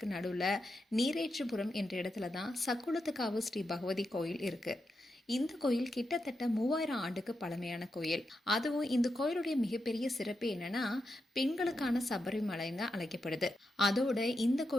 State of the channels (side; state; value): both; normal; correlation 0.86